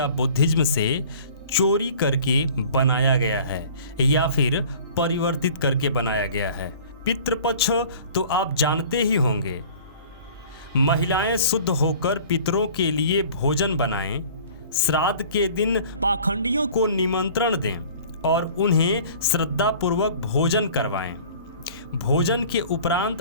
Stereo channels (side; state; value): both; inverted; correlation -0.47